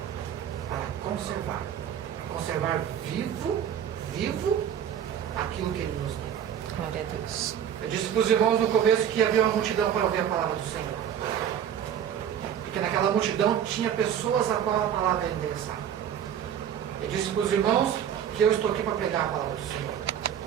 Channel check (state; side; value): quieter; left; 9.2 dB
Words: para conservar vivo aquilo que Ele nos deu. Glória a Deus. Eu disse para os irmãos no começo que havia uma multidão para ouvir a palavra do Senhor. Porque naquela multidão tinha pessoas a qual a palavra era endereçada. Eu disse para os irmãos que eu estou aqui para pregar a palavra do Senhor.